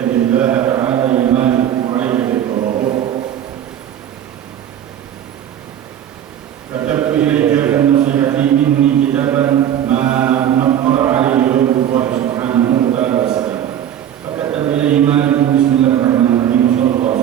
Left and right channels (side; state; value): left; quieter; 10.3 dB